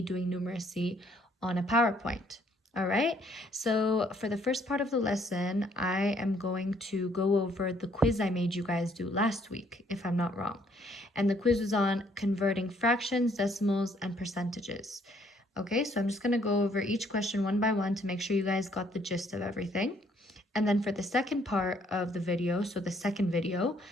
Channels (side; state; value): both; normal; correlation 0.65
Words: numeracy on a PowerPoint. All right, so for the first part of the lesson, I am going to go over the quiz I made you guys do last week, if I'm not wrong. And the quiz was on converting fractions, decimals, and percentages. Okay, so I'm just going to go over each question one by one to make sure you guys got the gist of everything. And then for the second part of the video, so the second video,